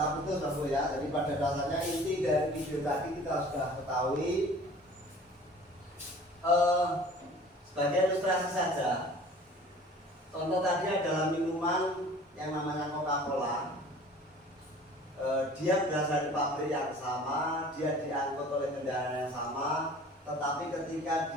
putus Bapak ya. Jadi pada dasarnya inti dari video tadi kita sudah ketahui. Sebagai ilustrasi saja, contoh tadi adalah minuman yang namanya Coca-Cola. Dia berasal dari pabrik yang sama, dia diangkut oleh kendaraan yang sama, tetapi ketika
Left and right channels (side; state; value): both; normal; correlation 0.47